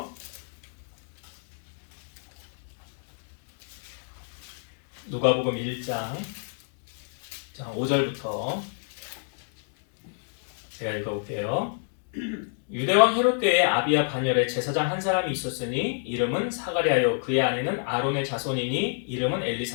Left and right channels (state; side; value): silent; right; digital silence